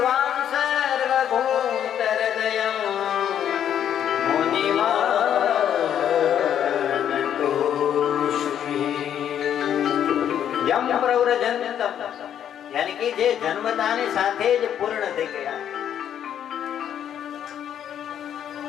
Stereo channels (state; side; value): quieter; right; 9.7 dB